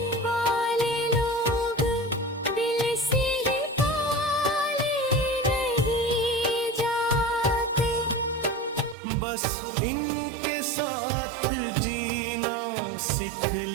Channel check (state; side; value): drops out; left; at 9.0 s